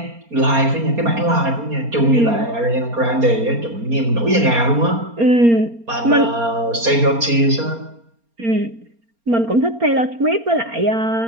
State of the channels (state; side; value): late; left; 4.3 ms